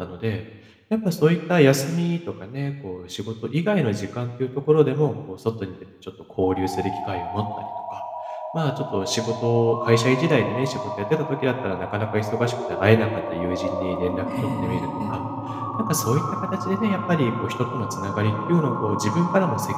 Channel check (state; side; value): identical; both; correlation 1.00